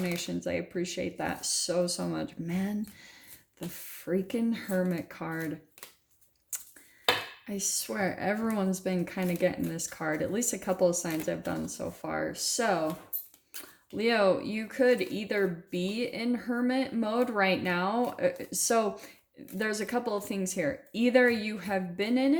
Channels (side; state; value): both; identical; correlation 1.00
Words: I appreciate that so much. Man, the freaking Hermit card. I swear, everyone's been kind of getting this card. At least a couple of signs I've done so far. So, Leo, you could either be in hermit mode right now. So there's a couple of things here. Either you have been in